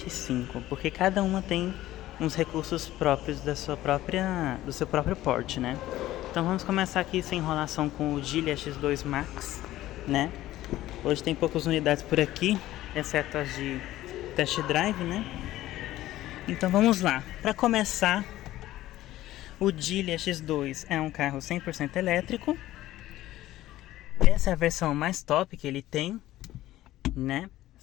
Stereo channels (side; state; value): right; quieter; 15.1 dB